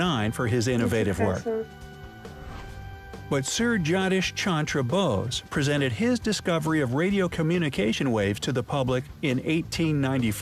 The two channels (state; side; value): identical; both; correlation 1.00